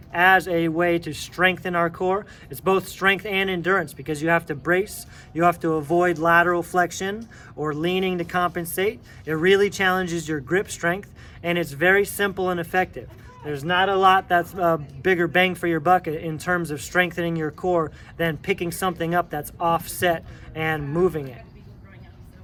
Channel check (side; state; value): both; identical; correlation 1.00